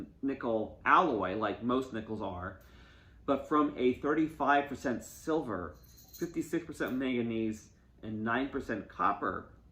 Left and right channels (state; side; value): identical; both; correlation 1.00